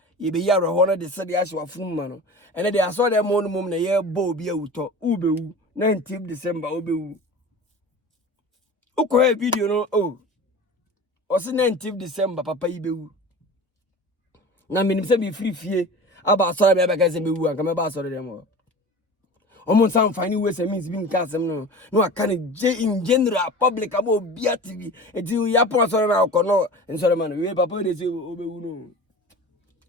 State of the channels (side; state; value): both; normal; correlation 0.36